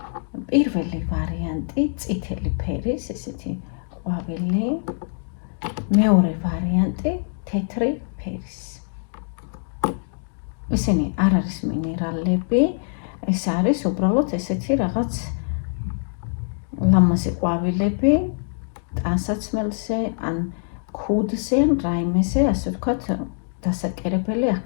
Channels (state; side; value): silent; right; digital silence